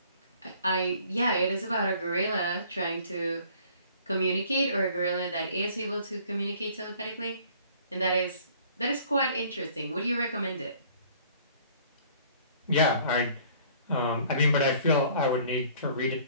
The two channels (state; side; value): inverted; both; correlation -0.55